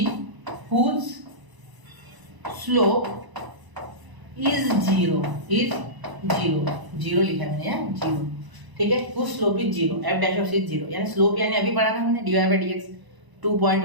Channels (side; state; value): left; late; 1.0 ms